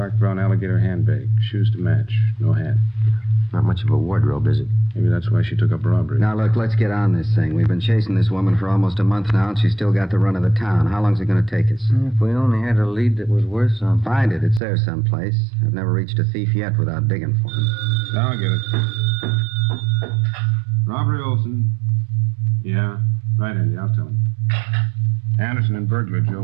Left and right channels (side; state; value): left; drops out; at 14.6 s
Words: brown alligator handbag. Shoes to match. No hat. Not much of a wardrobe, is it? Maybe that's why she took up robbery. Now, look, let's get on this thing. We've been chasing this woman for almost a month now, and she's still got the run of the town. How long's it going to take us? If we only had a lead that was worth something. Find it. It's there someplace. I've never reached a thief yet without digging for him. I'll get it. Robbery Olson. Yeah. Right, Andy, I'll tell him. Anderson and burglar Joe